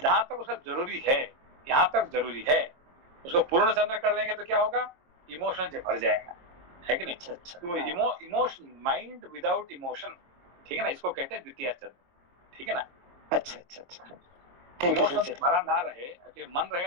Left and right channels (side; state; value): left; late; 23 ms